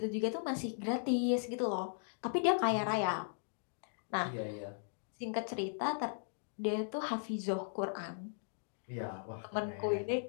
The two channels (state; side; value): silent; right; digital silence